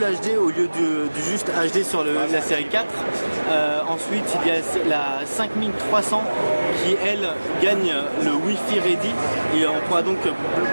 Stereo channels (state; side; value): inverted; both; correlation -1.00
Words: HD au lieu du juste HD sur la série 4. Ensuite il y a la 5300 qui elle gagne le Wi-Fi Ready et on pourra donc